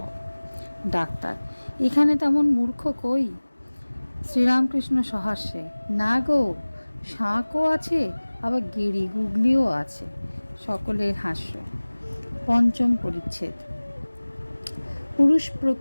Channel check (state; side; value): inverted; both; correlation -1.00